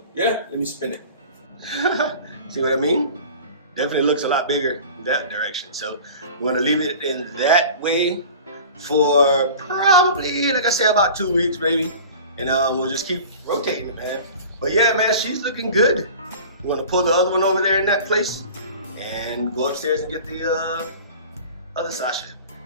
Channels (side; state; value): both; inverted; correlation -0.39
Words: yeah, let me spin it. See what I mean? Definitely looks a lot bigger in that direction. So I'm going to leave it in that way for probably, like I said, about 2 weeks, maybe. And we'll just keep rotating it, man. But yeah, man, she's looking good. I'm going to pull the other one over there in that place and go upstairs and get the other Sasha.